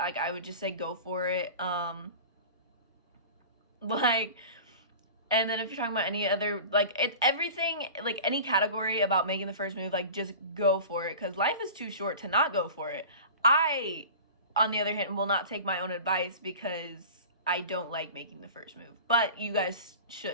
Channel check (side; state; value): both; inverted; correlation -0.37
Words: I would just say go for it. Like, and then if you're talking about any other, like, it's everything, like any category about making the first move, like, just go for it, because life is too short to not go for it. I, on the other hand, will not take my own advice, because I don't like making the first move, but you guys